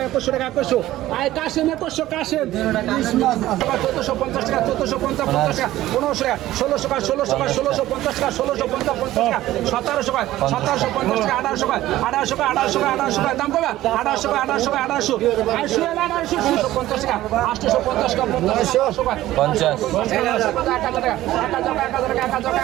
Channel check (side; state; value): left; quieter; 15.1 dB